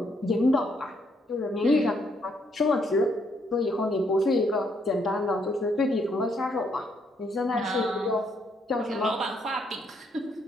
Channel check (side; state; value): both; normal; correlation 0.72